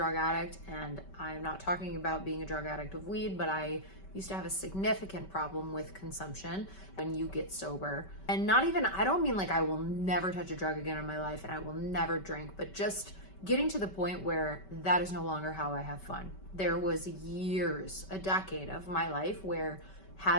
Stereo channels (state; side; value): late; right; 5.2 ms